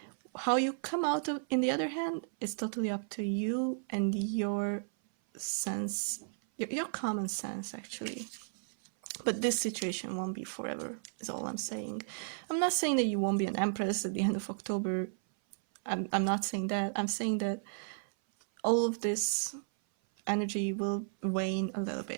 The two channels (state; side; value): silent; left; 55 dB below the other